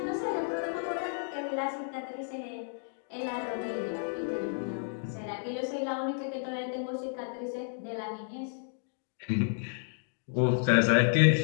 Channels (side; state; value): right; silent; digital silence